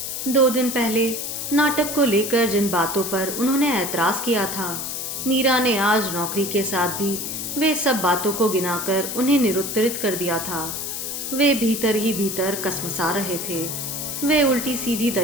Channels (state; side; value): noise; left; hiss, 5 dB below the sound